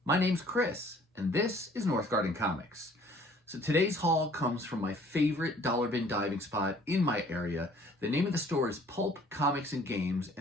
My name's Chris, and this is Northgarden Comics. So today's haul comes from my favorite dollar bin diving spot in my area. The name of the store is Pulp Comics and Games,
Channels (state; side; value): normal; both; correlation 0.55